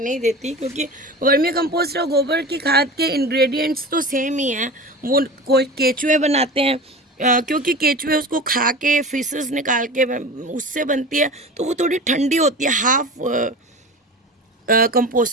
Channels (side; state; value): both; normal; correlation 0.33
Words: देती, क्योंकि वर्मी कंपोस्ट और गोबर की खाद के इंग्रेडिएंट्स तो सेम ही हैं। वो कोई केचुए बनाते हैं, क्योंकि केचुए उसको खा के फीसेस निकाल के उससे बनती है, तो वो थोड़ी ठंडी होती है, हाफ